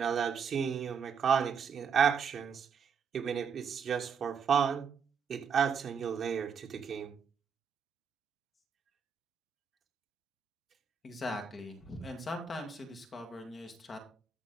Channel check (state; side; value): quieter; left; 6.5 dB